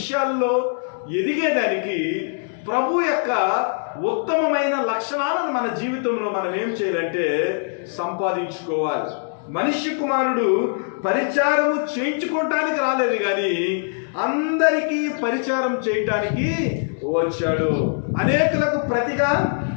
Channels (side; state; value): right; silent; digital silence